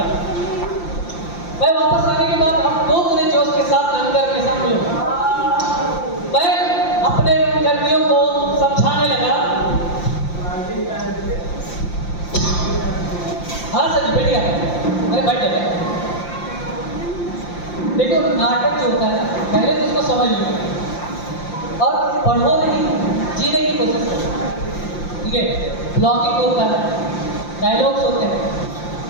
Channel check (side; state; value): right; late; 5.8 ms